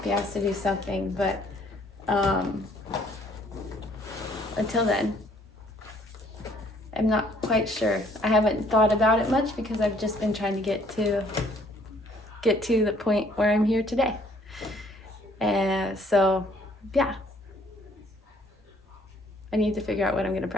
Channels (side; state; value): both; normal; correlation 0.62